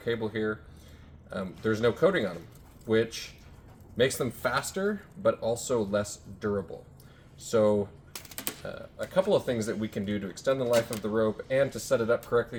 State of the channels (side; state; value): both; identical; correlation 1.00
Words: here, there's no coating on them, which makes them faster but also less durable. So a couple of things that we can do to extend the life of the rope and to set it up